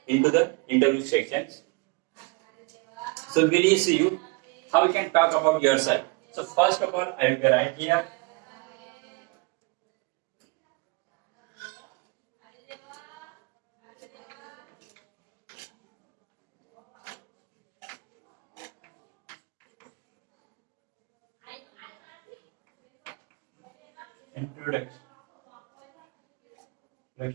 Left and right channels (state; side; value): quieter; left; 28.2 dB